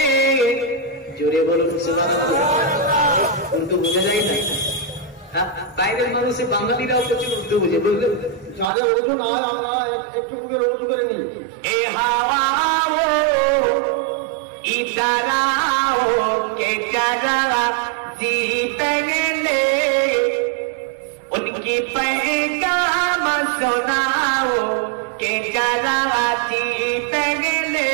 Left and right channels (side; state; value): left; drops out; at 8.7 s